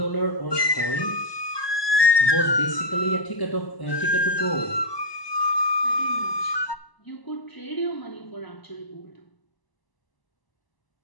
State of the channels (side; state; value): right; late; 1.2 ms